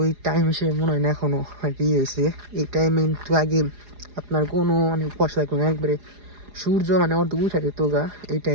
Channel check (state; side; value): late; left; 4.9 ms